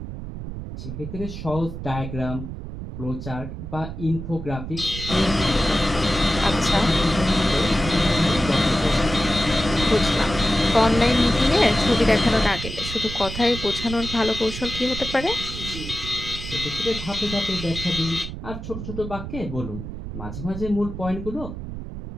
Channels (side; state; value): right; noise; rumble, 8 dB below the sound